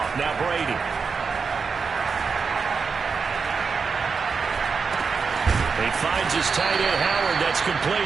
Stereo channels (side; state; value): left; quieter; 5.3 dB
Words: Now Brady. He finds his tight end, Howard. That's